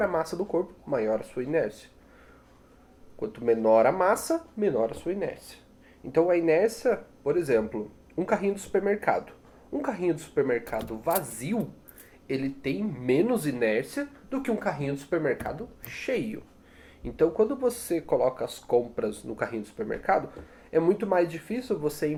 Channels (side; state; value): both; identical; correlation 1.00